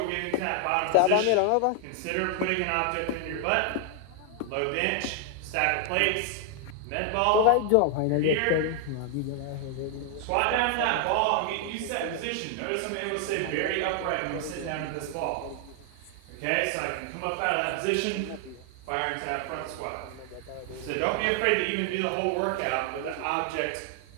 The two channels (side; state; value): both; different; correlation 0.00